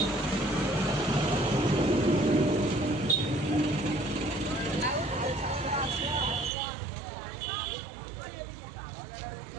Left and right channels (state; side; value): drops out; left; at 6.5 s